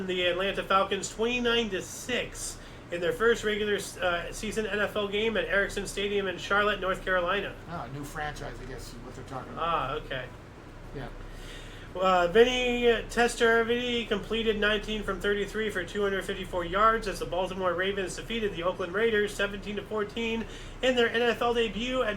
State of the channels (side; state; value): both; identical; correlation 1.00